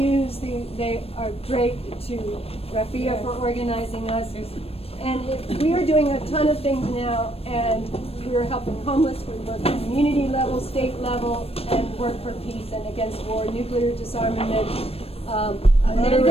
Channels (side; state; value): right; late; 0.28 ms